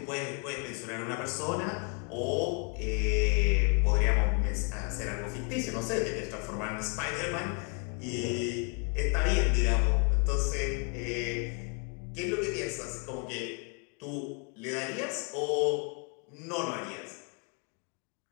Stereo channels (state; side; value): quieter; right; 37.2 dB